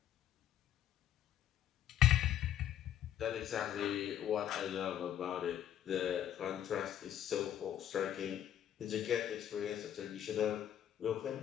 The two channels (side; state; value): right; quieter; 10.8 dB